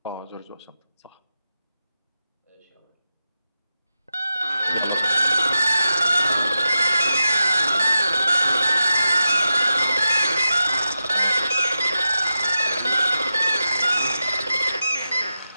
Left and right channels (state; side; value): inverted; both; correlation -0.91